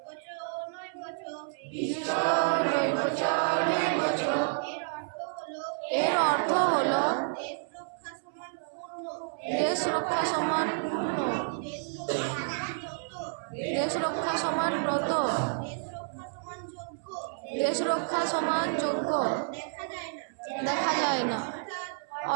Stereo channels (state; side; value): silent; left; 58 dB below the other